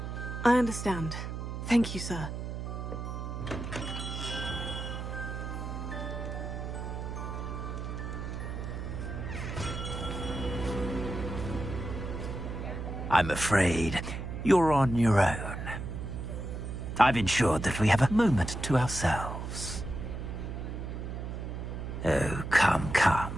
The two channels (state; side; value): noise; right; hum, 6 dB below the sound